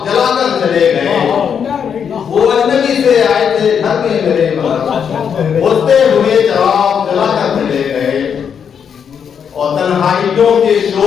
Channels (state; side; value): quieter; right; 7.4 dB